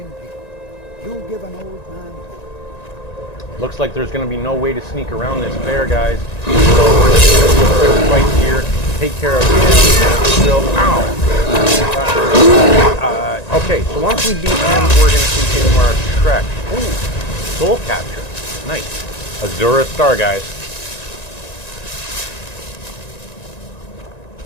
people. You give an old man hope. Looks like there's going to be no way to sneak around this bear, guys. So we're just going to do a quick fight here, take care of him. Ow! Okay, so once we beat him, we're going to continue our trek. Ooh, soul capture. Nice. Azura Star, guys.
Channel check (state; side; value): late; right; 1.9 ms